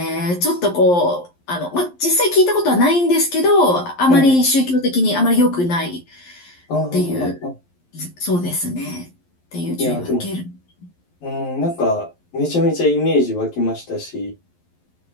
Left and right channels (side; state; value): right; late; 11 ms